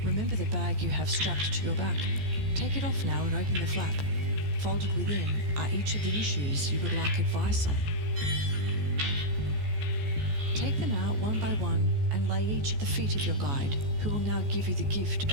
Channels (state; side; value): late; left; 14 ms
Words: Remember the bag you have strapped to your back. Take it off now and open the flap. Folded within are each of the issues you would like advice on. Take them out one by one and lay each at the feet of your guide, who will now give you the gift